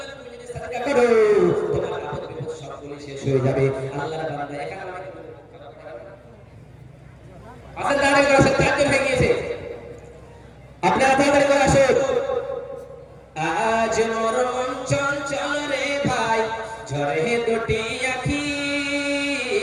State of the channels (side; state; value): both; identical; correlation 1.00